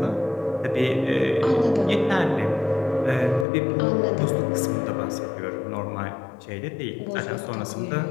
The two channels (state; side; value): drops out; right; at 3.5 s